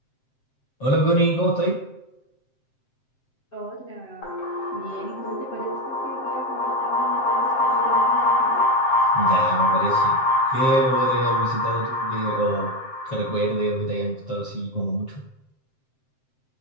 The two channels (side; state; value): right; late; 7.7 ms